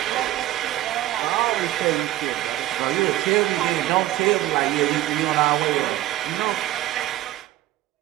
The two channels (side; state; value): left; quieter; 15.0 dB